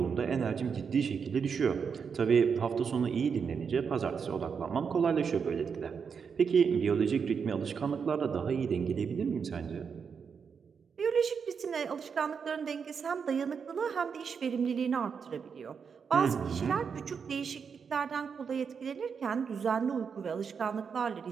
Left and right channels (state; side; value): quieter; left; 6.3 dB